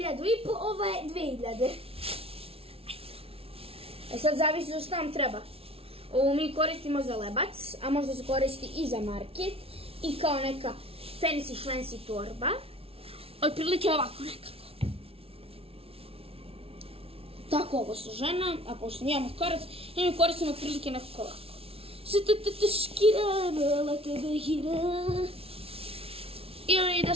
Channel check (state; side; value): late; left; 0.27 ms